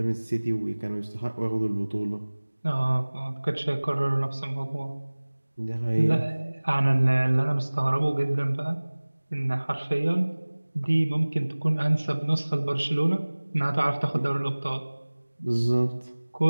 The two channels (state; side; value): inverted; both; correlation -1.00